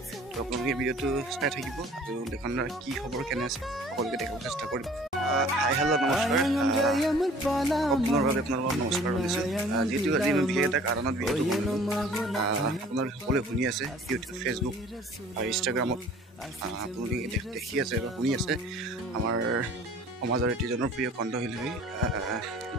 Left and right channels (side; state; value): both; normal; correlation 0.50